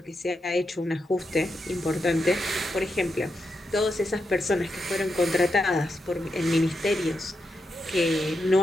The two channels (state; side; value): normal; both; correlation 0.85